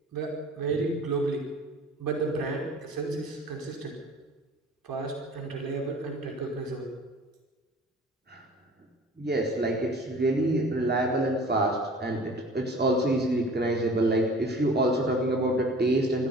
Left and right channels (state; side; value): normal; both; correlation 0.45